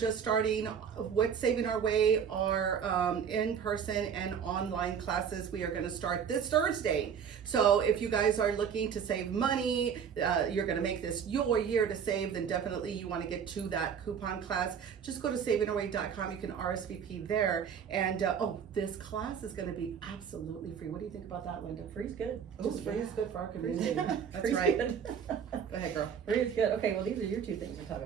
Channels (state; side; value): quieter; left; 7.5 dB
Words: starting with Saving Our Way, our in-person and online classes. We are gonna start this Thursday. So if you guys are looking to save money, you're gonna make this your year to save, then definitely you wanna get to that coupon class. Just go to savingourway.com, you can RSVP there. And this class is going to be absolutely free. What do you think about that, Linda? Free's good. Just free is good for our community. That's Free's right. good. Go ahead, girl. Free is good. Okay, well, these are your two things to talk